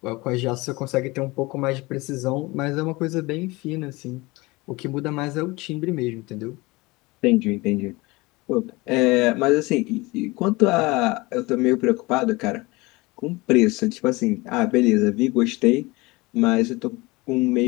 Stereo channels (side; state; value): right; quieter; 23.0 dB